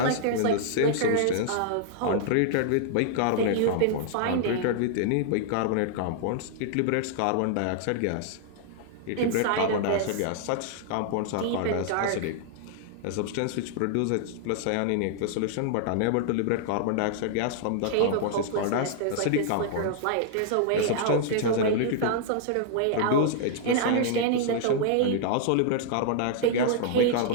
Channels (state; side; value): different; both; correlation -0.01